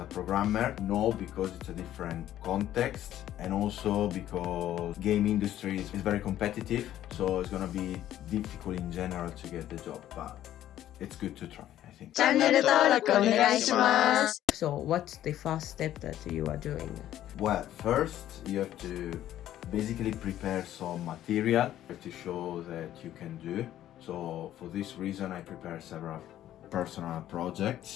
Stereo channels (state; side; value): quieter; right; 12.4 dB